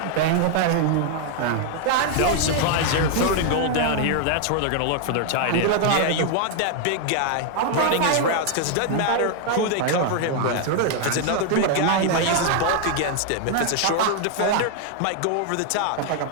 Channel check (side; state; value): both; different; correlation 0.00